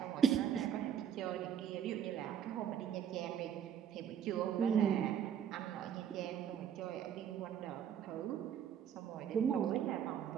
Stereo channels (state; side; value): quieter; left; 8.9 dB